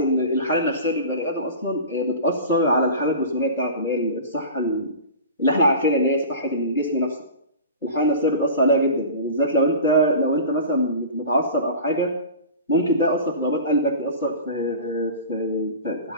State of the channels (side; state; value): both; inverted; correlation -0.35